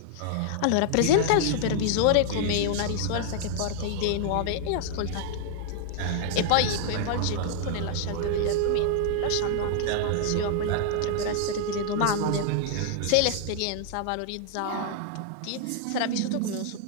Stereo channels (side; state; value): both; different; correlation 0.00